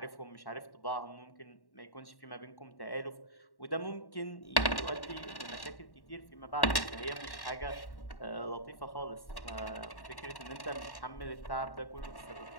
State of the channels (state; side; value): late; right; 1.1 ms